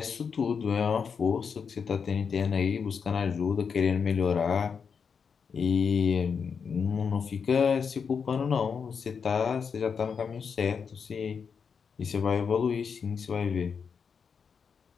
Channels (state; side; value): quieter; right; 6.2 dB